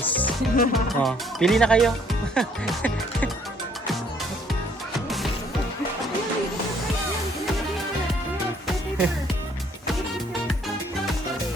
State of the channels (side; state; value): both; normal; correlation 0.63